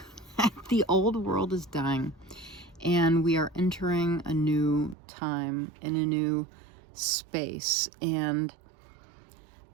The old world is dying. And we are entering a new time in a new space. And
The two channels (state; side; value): drops out; left; at 5.0 s